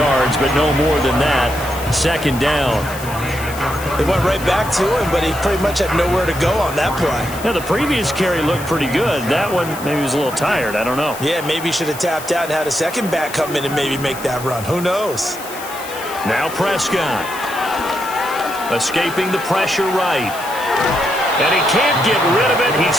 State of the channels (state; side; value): noise; left; hiss, 14 dB below the sound